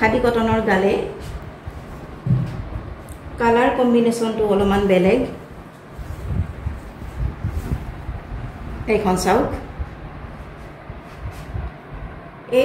কটনৰ গালে। কালাৰ কম্বিনেশনটো অলপমান বেলেগ। এইখন চাওক,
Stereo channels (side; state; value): both; identical; correlation 1.00